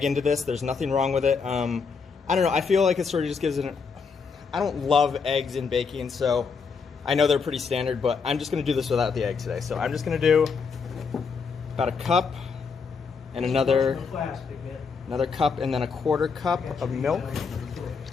into this. There's nothing wrong with it. I don't know, I feel like it sort of just gives it I don't love eggs in baking, so I know they're pretty standard, but I'm just gonna do this without the egg today. So I'm just gonna do about a cup and another cup and then a 1/4 cup of milk.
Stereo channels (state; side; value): quieter; right; 5.4 dB